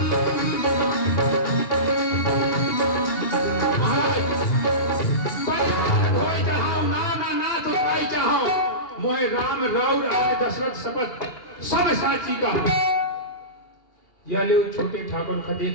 मोहे राम राउर आने दशरथ शपथ सब साची का। यह लो छोटे ठाकुर का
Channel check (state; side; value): late; right; 2.8 ms